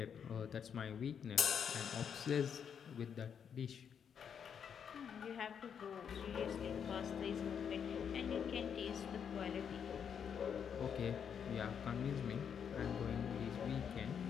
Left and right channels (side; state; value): right; quieter; 7.6 dB